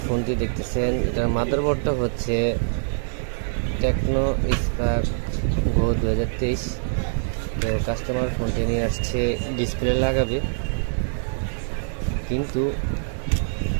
ফোনটি দেখতেছেন এটার মাদারবোর্ডটা হচ্ছে টেকনো স্পার্ক গো 2023। তো কাস্টমার ফোনটি নিয়ে আসছে ডিসপ্লে লাগাবে, কিন্তু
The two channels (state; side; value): silent; left; digital silence